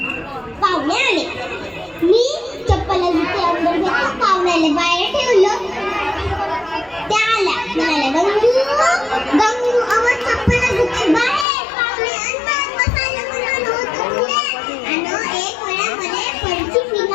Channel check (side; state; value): right; drops out; at 11.5 s